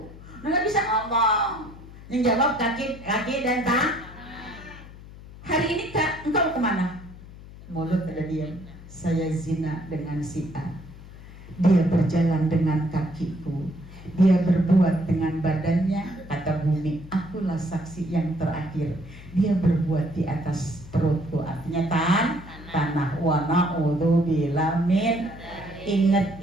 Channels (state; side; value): noise; left; hum, 17 dB below the sound